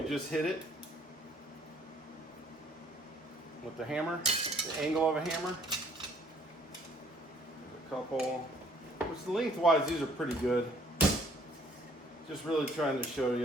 just hit it with the hammer, the angle of a hammer. There's a couple, which lengthwise these are pretty good. Just really trying to show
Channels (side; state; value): both; normal; correlation 0.61